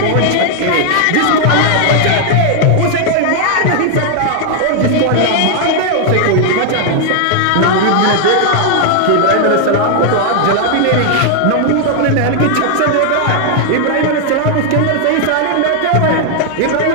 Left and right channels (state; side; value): different; both; correlation 0.00